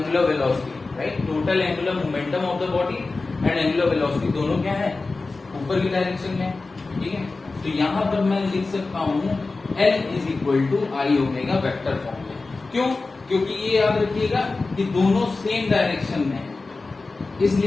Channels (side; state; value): right; quieter; 3.7 dB